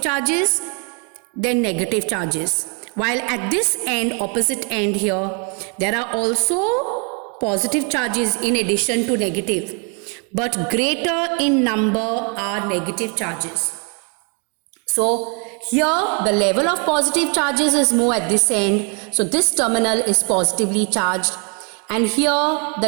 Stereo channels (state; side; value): quieter; left; 37.1 dB